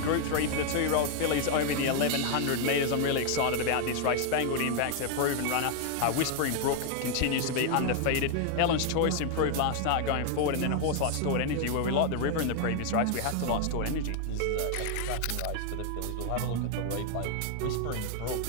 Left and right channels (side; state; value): both; different; correlation 0.00